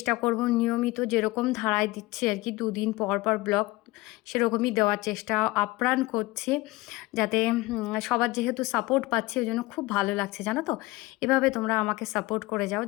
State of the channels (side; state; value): right; quieter; 20.7 dB